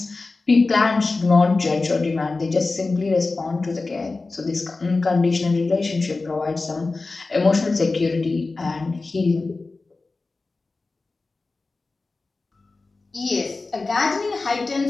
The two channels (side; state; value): right; quieter; 3.6 dB